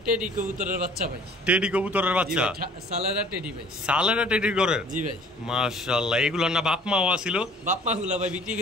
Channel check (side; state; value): both; normal; correlation 0.52